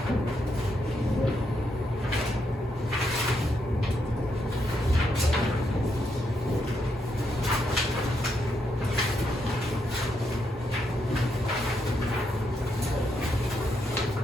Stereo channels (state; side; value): normal; both; correlation 0.79